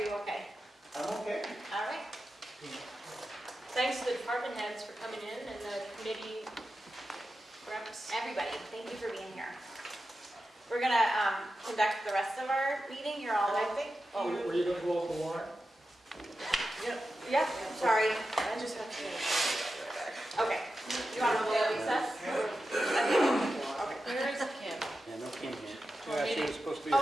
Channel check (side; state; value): both; normal; correlation 0.91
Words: you okay? I'm okay. All right. Thanks to the department heads for coming in and the committee reps. Everybody, thank you for being here. We're going to conduct the rest of our meeting. You're all leaving. Oh, were you gonna go over the warrant? Yeah, sorry. I just have to finish. Okay. You want to go to recess? Where is Kim? Yeah, no Kim here. Yeah, she was supposed to be.